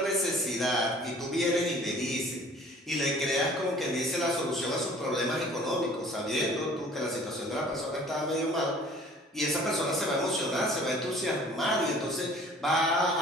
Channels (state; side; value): normal; both; correlation 0.51